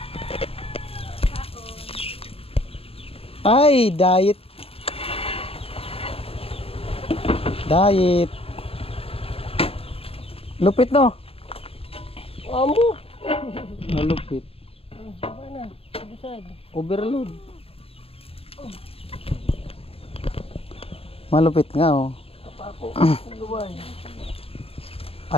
Ay, diet. Diet. Lupit no? Amo. Malupit. Mana? Busad. Overload. Malupit nga oh. Ako. Luway.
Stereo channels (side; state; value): right; late; 0.28 ms